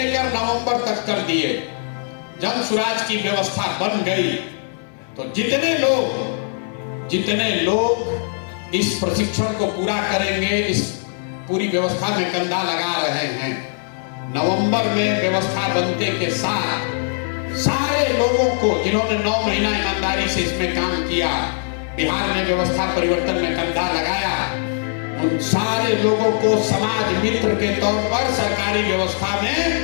नवंबर तक कर दिए, जन सुराज की व्यवस्था बन गई, तो जितने लोग इस प्रशिक्षण को पूरा करेंगे, इस पूरी व्यवस्था में कंधा लगा रहे हैं, नवंबर में व्यवस्था बनने के साथ सारे लोगों को जिन्होंने 9 महीना ईमानदारी से इसमें काम किया, बिहार में व्यवस्था परिवर्तन में कंधा लगाया, उन सारे लोगों को समाज मित्र के तौर पर सरकारी व्यवस्था में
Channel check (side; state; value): right; silent; 65 dB below the other